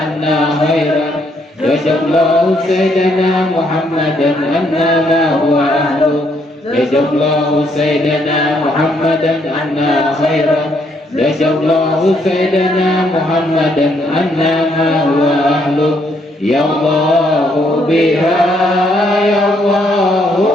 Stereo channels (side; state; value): both; normal; correlation 0.71